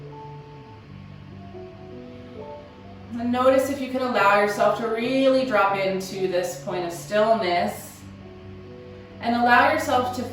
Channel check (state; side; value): identical; both; correlation 1.00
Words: And notice if you can allow yourself to really drop into this point of stillness and allow yourself to